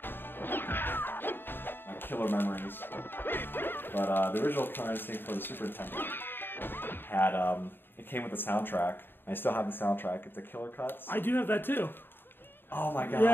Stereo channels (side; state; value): right; late; 0.098 ms